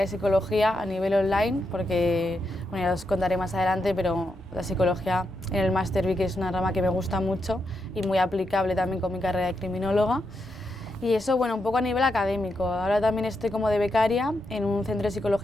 psicología a nivel online, porque, bueno, ya os contaré más adelante, pero la psicología en el máster vi que es una rama que me gusta mucho y muy aplicable también con mi carrera de criminóloga. Y eso, bueno, un poco a nivel académico. Ahora también estoy como de becaria en un centro de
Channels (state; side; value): normal; both; correlation 0.84